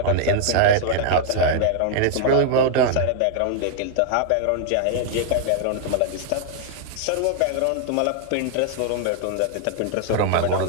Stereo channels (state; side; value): different; both; correlation 0.00